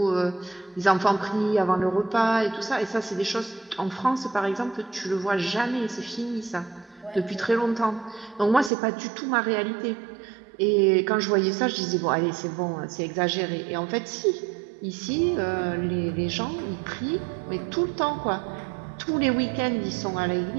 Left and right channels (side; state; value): left; drops out; at 8.7 s